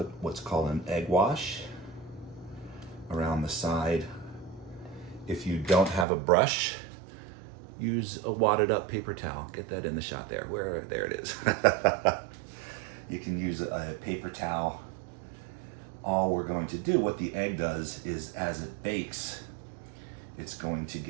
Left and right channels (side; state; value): left; drops out; at 6.1 s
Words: what's called an egg wash around the side. If you don't have a brush, use a wadded up paper towel. Get that in the shot there. There it is. You can use a paper towel. All we're going to do, what the egg does is, as it bakes, it's going to